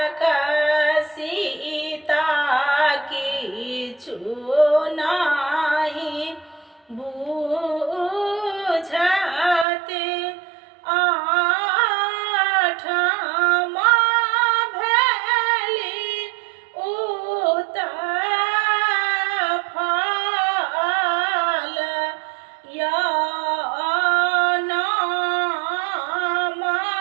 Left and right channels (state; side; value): drops out; left; at 9.7 s